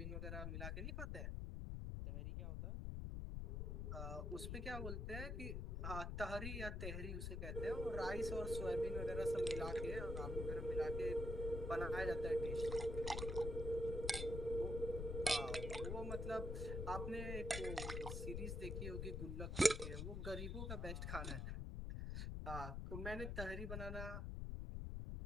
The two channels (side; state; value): left; noise; rumble, 2 dB below the sound